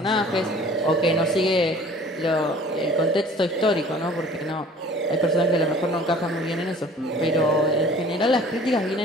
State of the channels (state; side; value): normal; both; correlation 0.49